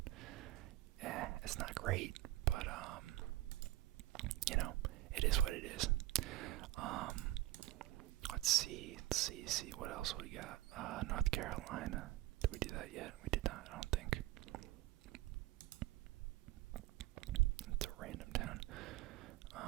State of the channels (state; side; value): quieter; left; 16.1 dB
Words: it's not great, but